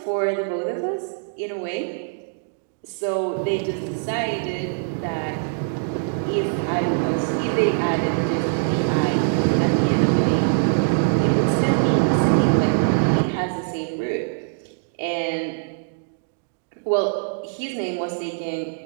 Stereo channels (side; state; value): left; silent; digital silence